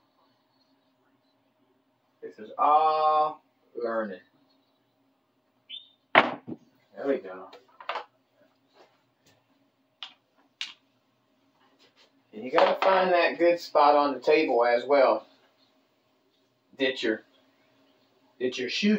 This is all learning. There we go. And you got to find that good spot on the table as well that you're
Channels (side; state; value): both; identical; correlation 1.00